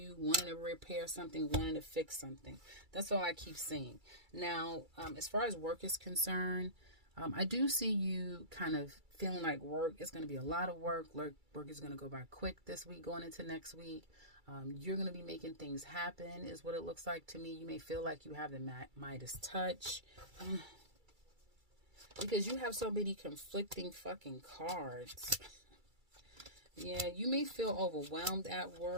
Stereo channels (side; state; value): left; late; 2.3 ms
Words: repair something, wanting to fix something. That's all I keep seeing. Now, as far as work is concerned, I do see you kind of feeling like work is going to be a lot of work. Work is going to go by quick this week, going into next week. You're going to be making things happen, is what it looks like to me. You may feel like you have the Midas touch. Because you have so many conflicting fucking cards. Yeah, you may feel overwhelmed at